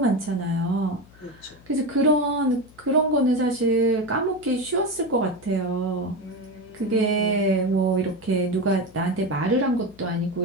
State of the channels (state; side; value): noise; left; hum, 25 dB below the sound